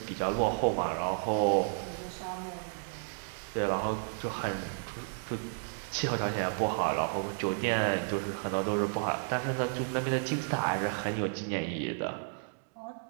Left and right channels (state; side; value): silent; left; digital silence